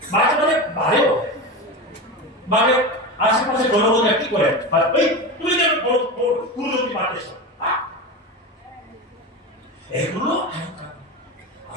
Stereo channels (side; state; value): both; normal; correlation 0.24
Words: মাঝে মাঝে বাড়েও মানে আশেপাশে জনগণ কি করে ওই তুমি যেন পুরোজনকে পারতেছ এগুলো